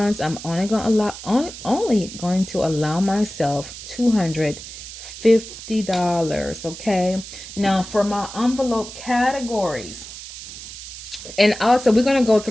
I'm only going to allow myself $250. Okay. Now for my envelope categories, and also we're going to go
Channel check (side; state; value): right; noise; hiss, 12 dB below the sound